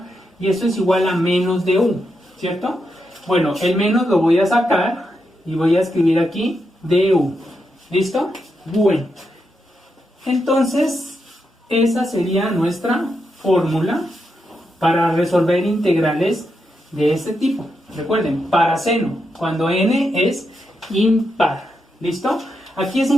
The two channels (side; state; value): both; normal; correlation 0.84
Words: y esto es igual a menos de u, ¿cierto? Bueno, el menos lo voy a sacar y voy a escribir aquí du. ¿Listo? Bueno, entonces esa sería nuestra fórmula para resolver integrales de este tipo. Recuerden, para seno, cuando n es impar. ¿Listo? Aquí es